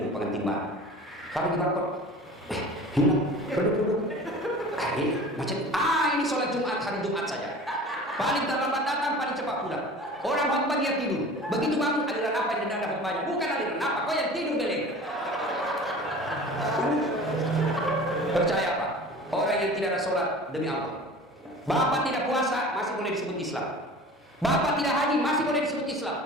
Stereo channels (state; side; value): normal; both; correlation 0.40